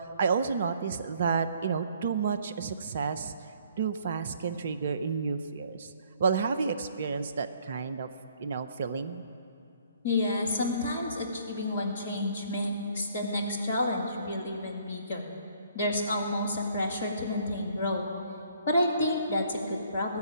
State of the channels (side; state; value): both; inverted; correlation -0.62